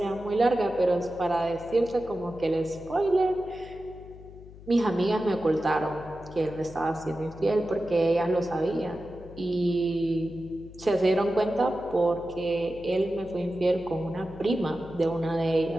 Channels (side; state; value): left; noise; hum, 18 dB below the sound